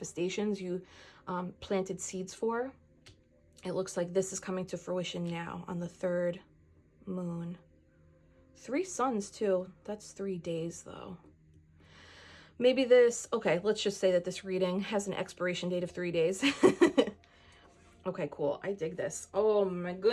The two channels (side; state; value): both; identical; correlation 1.00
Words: you planted seeds for. It looks like this is coming to fruition now on the 3rd moon. 3 suns too. That's 3 days though. Maybe this, okay, let's just say that this reading has an expiration date of 3 days. Okay, cool. I dig this. Oh my